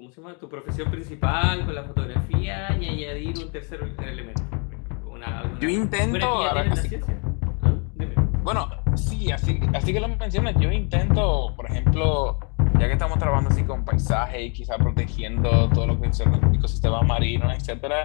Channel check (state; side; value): quieter; right; 36.6 dB